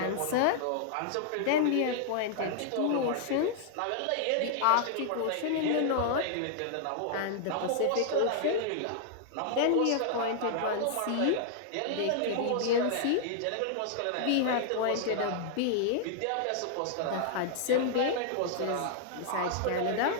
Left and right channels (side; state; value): both; different; correlation -0.01